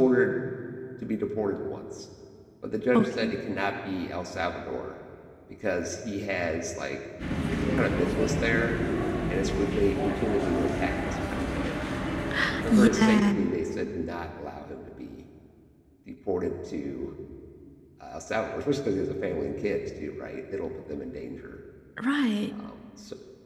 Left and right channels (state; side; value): identical; both; correlation 1.00